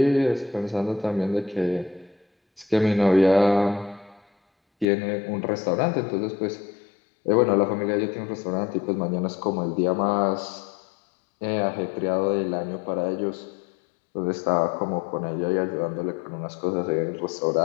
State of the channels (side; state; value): right; drops out; at 4.9 s